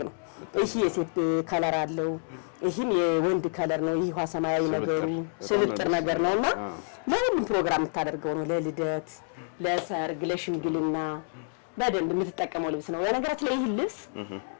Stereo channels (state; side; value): silent; right; 58 dB below the other